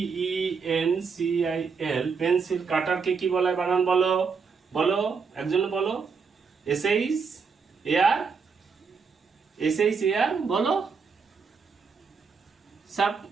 PENCIL, পেন্সিল কাটারকে কি বলে? বানান বলো, বলো, একজন বলো। SHAR, বলো সব।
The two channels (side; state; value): left; quieter; 5.4 dB